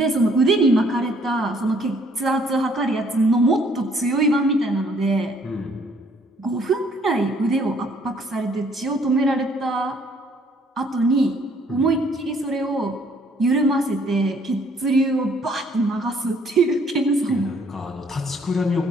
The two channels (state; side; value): normal; both; correlation 0.63